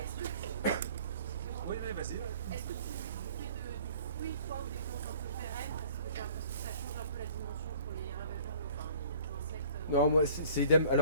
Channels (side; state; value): both; inverted; correlation -0.50